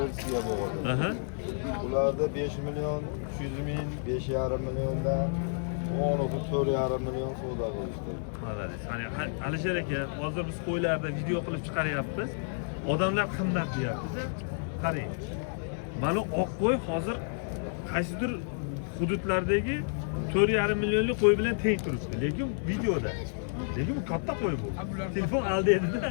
bo'ladi. Aha. Ularda 5 million 300 ming, 5,5 milliondan 4,5 million savdo qilishdi. Malades. Hani Alisher aka, hozir biz qo'ylarda video qilib chiqaryapmiz. Odamlar qimmat deyapti. Qarang. Mana oq qo'y hozir qaysidir hududlardagi 4,5 millionlik qo'y bilan teng turibdi. Lekin videoda. Lekin bu katta qo'y bu. Telefon aldaydi-da.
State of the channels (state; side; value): silent; right; digital silence